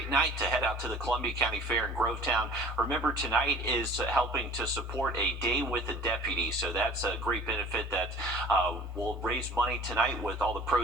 night to head out to the Columbia County Fair in Grovetown. Remember, tonight is helping to support a day with a deputy, so that's a great benefit that we'll raise money tonight with all the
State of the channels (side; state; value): both; normal; correlation 0.47